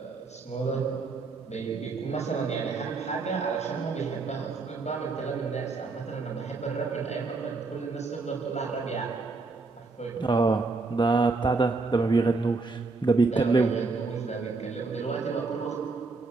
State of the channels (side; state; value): left; quieter; 3.9 dB